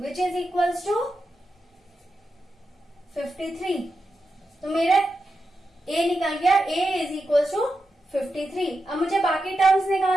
which is equal to 53. तो मेरा a निकल गया, a इज इक्वल टू 53. अब मुझे बाकी टर्म्स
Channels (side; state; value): both; normal; correlation 0.88